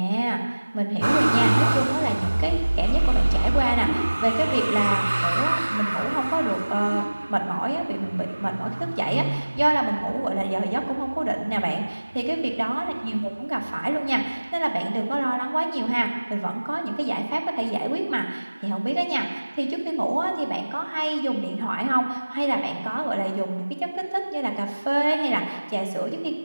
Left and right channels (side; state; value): both; inverted; correlation -1.00